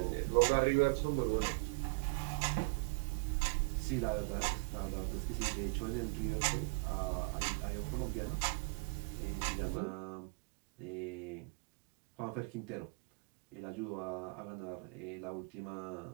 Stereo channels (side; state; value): left; quieter; 32.0 dB